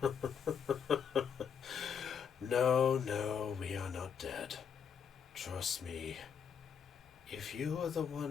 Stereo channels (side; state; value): right; quieter; 7.3 dB